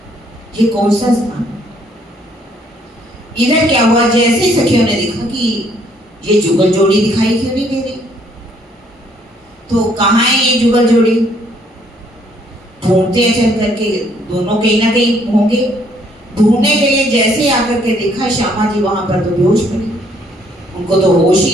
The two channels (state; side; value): normal; both; correlation 0.66